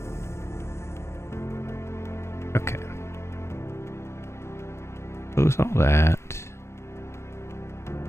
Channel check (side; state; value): right; late; 0.13 ms